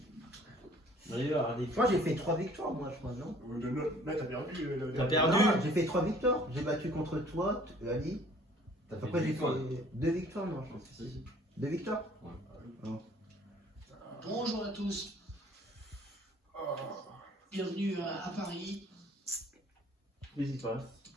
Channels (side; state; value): both; normal; correlation 0.55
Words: D'ailleurs, allez. Moi j'ai fait 3 victoires, moi je crois, non? Là, t'as perdu. T'as perdu. Non, j'ai fait 3 victoires. J'ai battu contre toi, Ali. Après j'ai fait 2 victoires, non, je pense. Si. 2 victoires? Ouais. Non. Bonjour à tous, bienvenue à Paris. Qu'est-ce qui se passe?